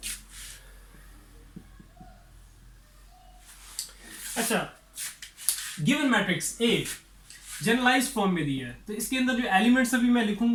अच्छा, given matrix A generalised form में दिया है, तो इसके अंदर जो एलिमेंट्स अभी मैं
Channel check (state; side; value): identical; both; correlation 1.00